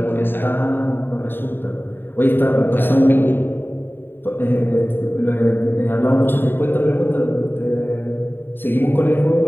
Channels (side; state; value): right; late; 0.097 ms